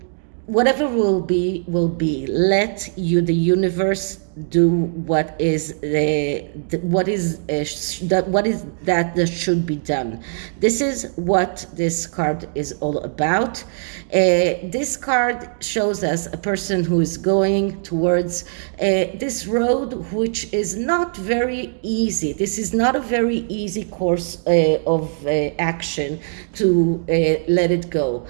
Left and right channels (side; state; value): left; silent; digital silence